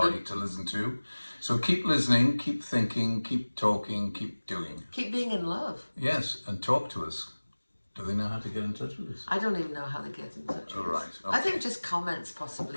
to listen to. So keep listening, keep thinking, keep talking, keep doing. Keep being in love. Yes, and talk to us. Do they know how to get in touch with us? I don't even know how they get in touch with All us. right, I okay. think just comments possibly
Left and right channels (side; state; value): both; inverted; correlation -1.00